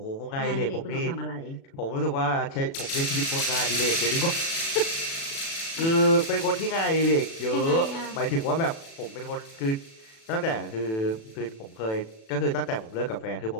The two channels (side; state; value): right; late; 36 ms